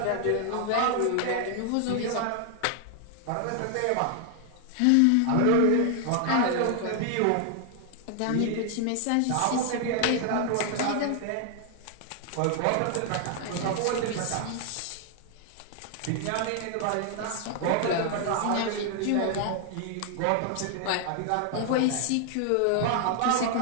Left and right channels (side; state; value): both; different; correlation 0.00